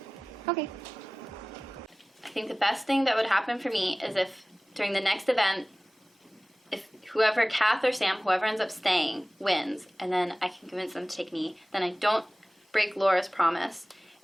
Okay. I think the best thing that would happen for me is if during the next event, if whoever, Kath or Sam, whoever ends up staying, wins, and then I can convince them to take me, then I don't break Laura's promise,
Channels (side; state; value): both; normal; correlation 0.98